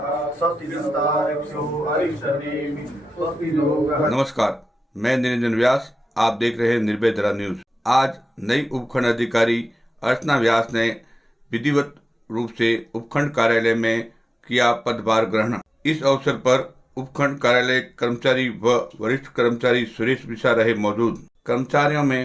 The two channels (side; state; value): both; normal; correlation 0.94